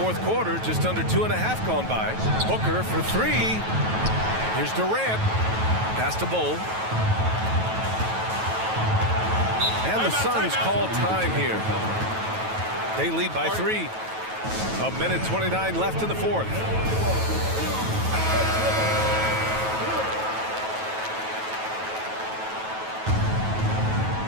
quarter, just under 2.5 gone by. Booker for three. Here's Durant. Pass to Bull. And the Suns call time here. They lead by 3. 1:29 left in the fourth.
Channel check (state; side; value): late; left; 9.2 ms